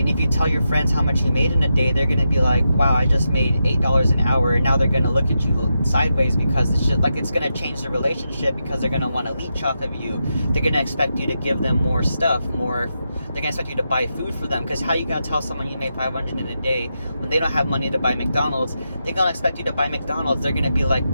if you tell your friends how much you made in a day, they're going to be like, wow, I just made $8 an hour. And now they're going to look at you sideways, because it's just like, it's going to change the relationship, because they're going to want to leech off of you. They're going to expect you to give them more stuff, they're going to expect you to buy food for them, because how you going to tell someone you made $500 in a day when they don't have money to buy McDonald's? They're going to expect you to buy McDonald's. They're going to be like,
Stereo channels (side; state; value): both; inverted; correlation -0.86